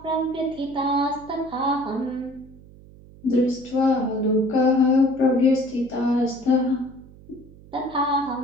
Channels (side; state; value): right; noise; hum, 22 dB below the sound